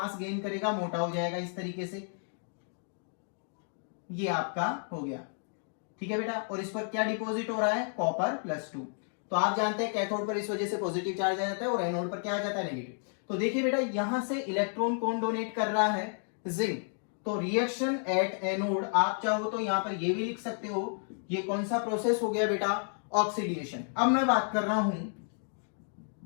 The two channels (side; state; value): right; silent; 56 dB below the other